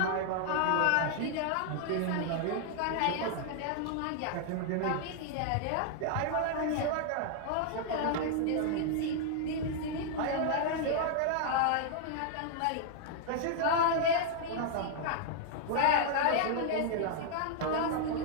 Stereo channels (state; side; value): different; both; correlation -0.01